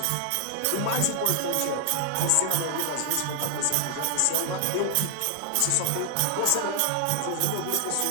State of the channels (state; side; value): different; both; correlation 0.00